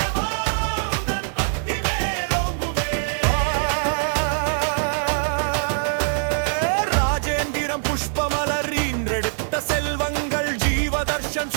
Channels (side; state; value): left; silent; 63 dB below the other